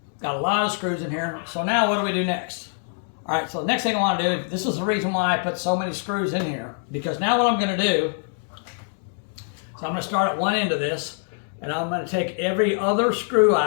Got a lot of screws in here. So now what do we do next? Alright, so the next thing I want to do, this is the reason why I put so many screws in here, because now what I'm going to do, so I'm going to start at one end of this, and I'm going to take every other screw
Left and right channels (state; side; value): silent; right; 62 dB below the other